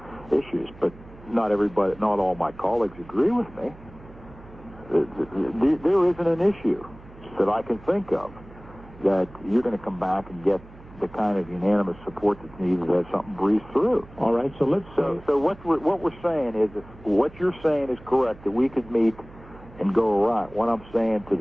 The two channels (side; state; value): right; noise; hum, 20 dB below the sound